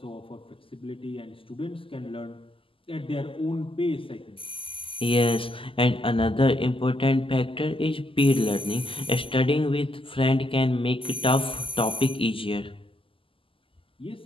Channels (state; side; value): late; right; 0.25 ms